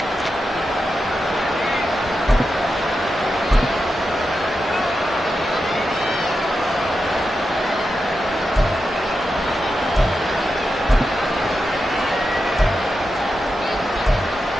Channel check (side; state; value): both; normal; correlation 0.89